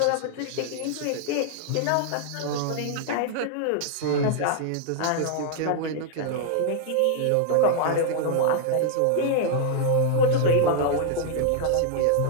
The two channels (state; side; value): different; both; correlation 0.00